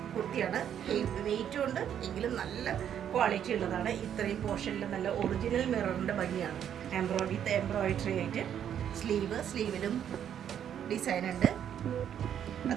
കുർത്തിയാണ്. വെയിറ്റും ഉണ്ട്, എങ്കിലും നല്ല ക്വാളിറ്റി ഉള്ളതാണ്. ഇത്രയും പോർഷനിൽ നല്ല ഒറിജിനൽ മിററിൻ്റെ ഭംഗിയാണ്. എംബ്രോയിഡറി ആയിട്ട് സ്ലീവിലും ഡിസൈൻ ഉണ്ട്.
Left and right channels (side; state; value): left; quieter; 9.4 dB